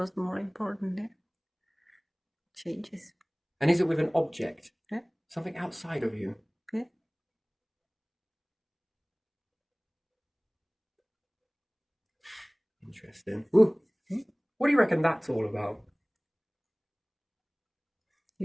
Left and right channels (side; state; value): both; identical; correlation 1.00